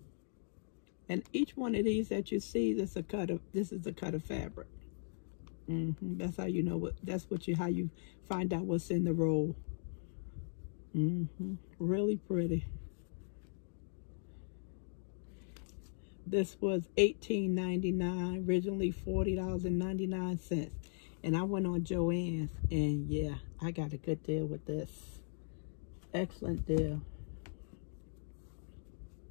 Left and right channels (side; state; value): right; silent; digital silence